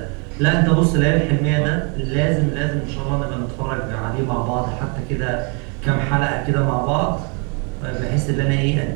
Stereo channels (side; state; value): left; quieter; 35.1 dB